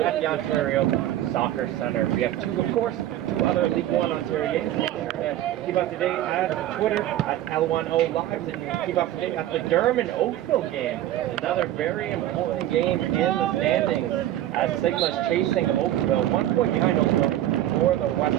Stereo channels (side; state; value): left; quieter; 13.2 dB